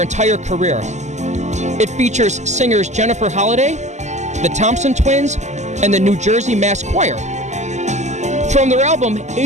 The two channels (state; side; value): late; left; 0.34 ms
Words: entire career. It features singers Jennifer Holliday, the Thompson Twins, and the New Jersey Mass Choir. From their album,